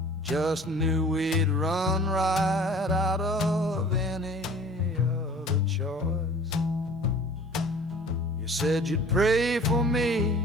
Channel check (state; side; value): normal; both; correlation 0.47